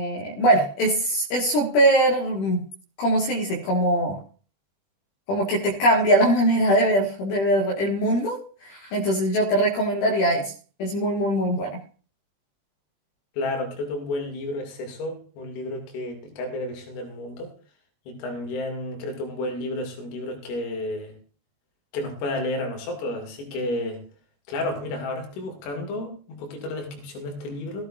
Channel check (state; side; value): late; right; 21 ms